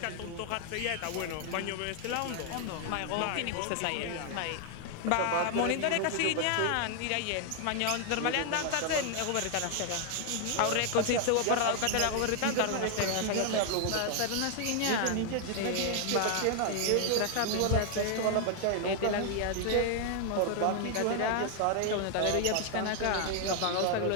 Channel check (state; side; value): different; both; correlation 0.00